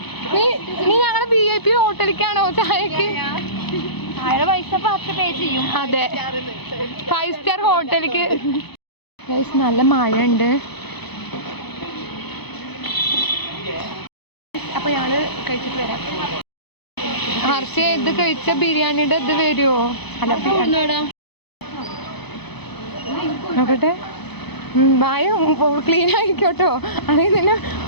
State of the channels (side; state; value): right; late; 0.98 ms